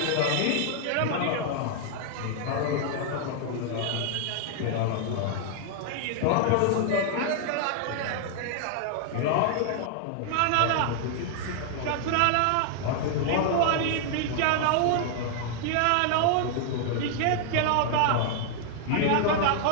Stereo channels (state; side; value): different; both; correlation 0.00